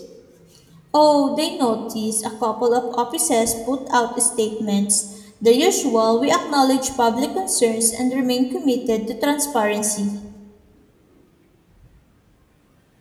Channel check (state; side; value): identical; both; correlation 1.00